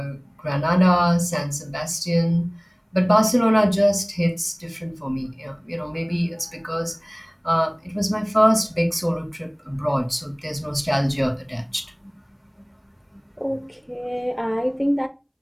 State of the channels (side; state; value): both; identical; correlation 1.00